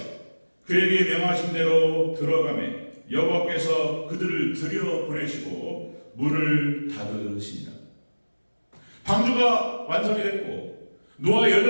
그에게 명하신 대로 들어가매 여호와께서 그들을 들여보내시고 문을 닫으시니라. 방주가 완성이 됐고 노아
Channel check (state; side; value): inverted; both; correlation -1.00